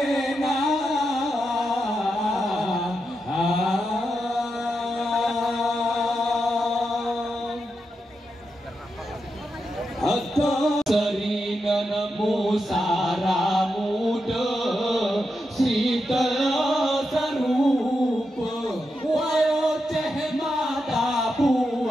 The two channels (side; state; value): both; normal; correlation 0.86